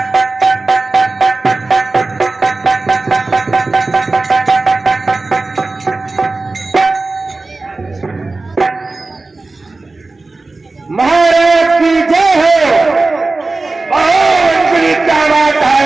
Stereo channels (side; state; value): left; quieter; 3.4 dB